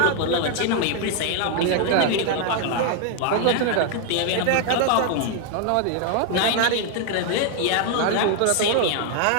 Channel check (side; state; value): both; different; correlation 0.00